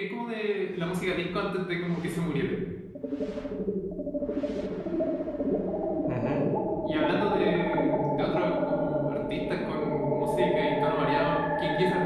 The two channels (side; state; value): both; identical; correlation 1.00